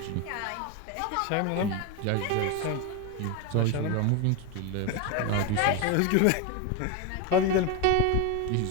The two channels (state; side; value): different; both; correlation 0.02